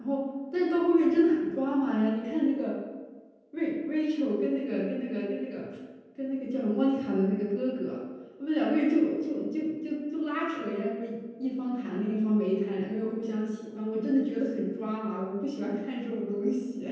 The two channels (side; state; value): both; identical; correlation 1.00